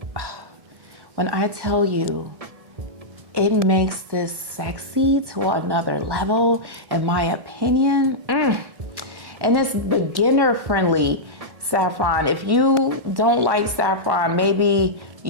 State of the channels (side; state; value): left; late; 1.1 ms